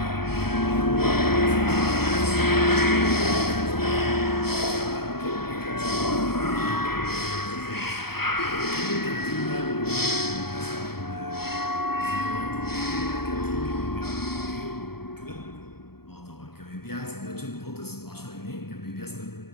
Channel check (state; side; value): late; right; 0.95 ms